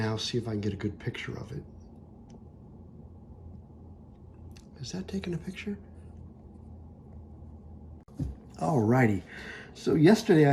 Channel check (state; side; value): identical; both; correlation 1.00